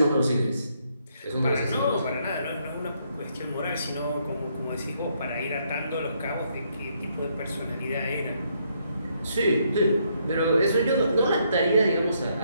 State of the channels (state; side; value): inverted; both; correlation -0.73